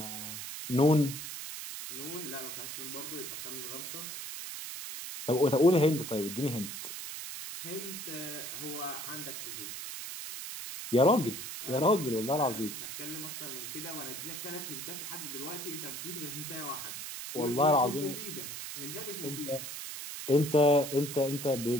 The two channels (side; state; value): right; noise; hiss, 7 dB below the sound